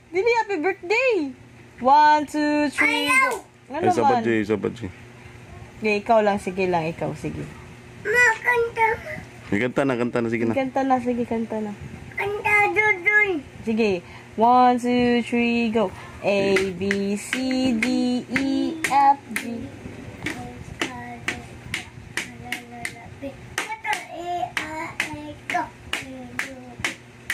Dili, happy birthday! 1, 2, 3, go. Ano Ay, sabat naman? sabat J. Okay, ikaw lang. Sige lang, ikaw. Sige. Makanta. Kanta na, sige na. Kanta na, sige, kanta na. Kanta dudun. Sige. 1, 2, 3, go. A, B, C, D, E, F, G.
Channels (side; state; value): both; identical; correlation 1.00